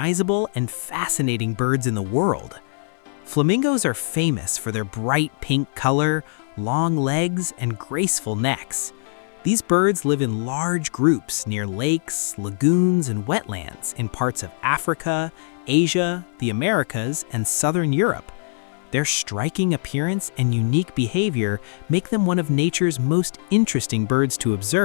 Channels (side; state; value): right; silent; 58 dB below the other